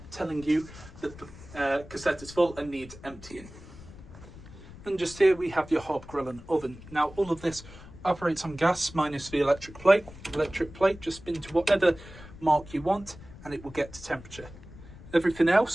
telling you that the cassette is full and needs emptying. And just here we have your hob, grill and oven. Now all of this operates on gas minus the electric plate. Electric plate, just spin to whatever mark you want and it will get to temperature. Everything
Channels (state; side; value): noise; left; rumble, 17 dB below the sound